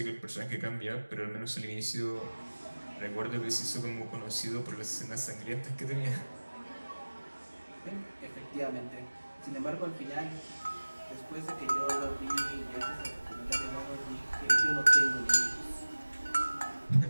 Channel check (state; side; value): inverted; both; correlation -1.00